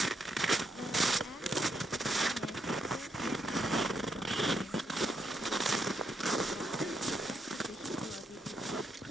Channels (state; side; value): normal; both; correlation 0.78